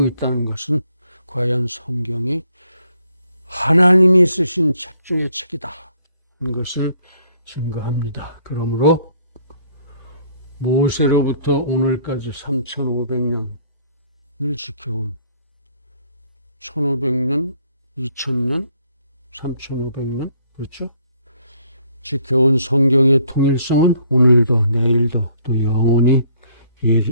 있다는 것은 과연 성경이 하나님이 쓰신 책 중의 책이다 하는 것을 증거합니다. 그러므로 모세로부터 오늘까지 3500년을 지켜온 1500년, 2000년, 3500년, 그렇죠? 지켜온 성경의 통일성은 오늘도 내일도 또 영원히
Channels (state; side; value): inverted; both; correlation -0.64